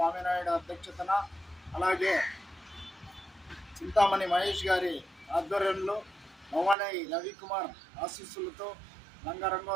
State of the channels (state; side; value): drops out; left; at 6.8 s